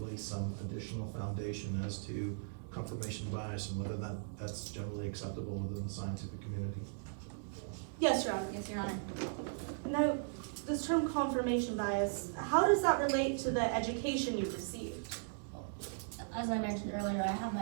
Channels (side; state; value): left; silent; digital silence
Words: some additional foundation as to confirmation bias and whether that's generally acceptable within the scientific community. Yes, Your Honor. Yes, Your Honor. Now, this term confirmation bias, how does that relate to the education you received? As I mentioned earlier, I have